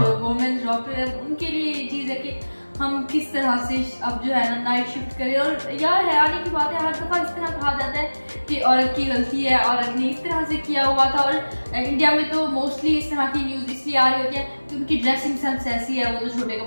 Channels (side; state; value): both; inverted; correlation -1.00